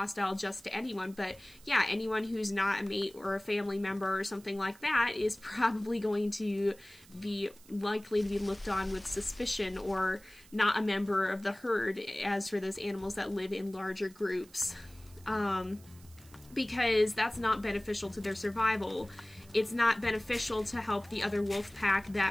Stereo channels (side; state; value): right; noise; hiss, 24 dB below the sound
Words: just to anyone. But yeah, anyone who's not a mate or a family member or something like that is probably going to be likely to be looked on with suspicion, or not a member of the herd, as for those animals that live in larger groups. Because that's not beneficial to their survival. It's not beneficial to help the other wolf pack